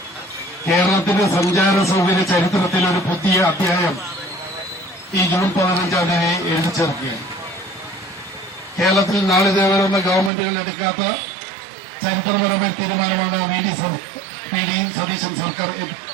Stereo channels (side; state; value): left; drops out; at 10.3 s